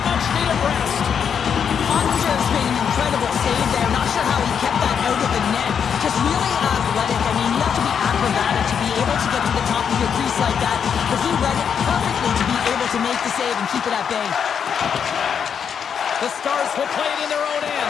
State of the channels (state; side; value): quieter; right; 7.4 dB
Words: much-needed rest. Ottinger's made an incredible save there. Not sure how he kept that out of the net. Just really athletic. I mean, you have to be acrobatic to be able to get to the top of your crease like that. But he read it perfectly to be able to make the save and keep it at bay. The Stars will play it in their own